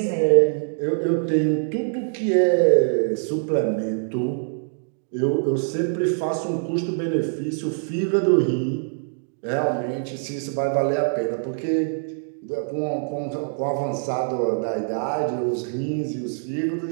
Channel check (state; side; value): silent; left; digital silence